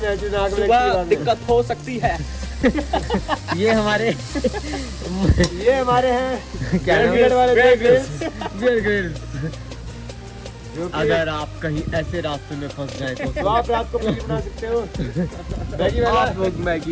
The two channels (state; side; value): identical; both; correlation 1.00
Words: जो नाक में लगती है, दिक्कत हो सकती है। ये हमारे हैं क्या नाम बियर वाले ग्रिल्स। अगर आप कहीं ऐसे रास्ते में फंस जाए तो आप रात को पनीर बना सकते हो,